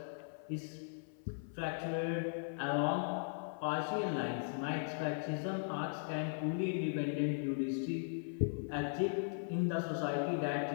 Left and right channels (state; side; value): silent; right; 52 dB below the other